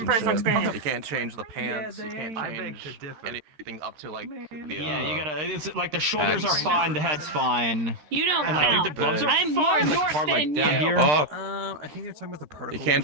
personal experience. You can't change the pants. You can't change anything up to like the. Yeah, you gotta. It's like the shoulders are fine, the head's fine. You don't. And like count. the gloves are I'm fine. more Like part like than down you. here. I think you're talking about the particle. You can't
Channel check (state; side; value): late; left; 13 ms